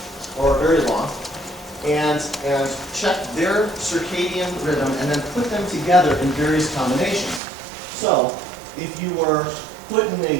or very long, and check their circadian rhythm and then put them together in various combinations. So, if you were put in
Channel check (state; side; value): drops out; left; at 7.4 s